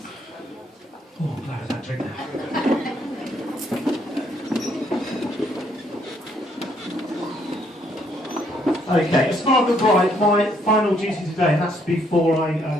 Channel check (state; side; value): normal; both; correlation 0.69